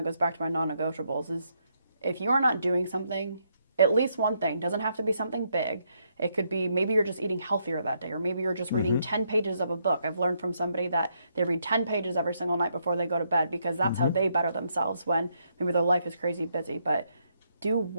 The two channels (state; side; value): inverted; both; correlation -0.76